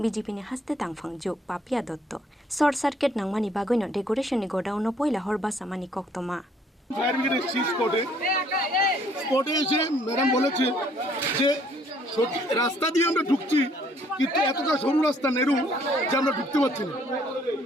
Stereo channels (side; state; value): both; normal; correlation 0.63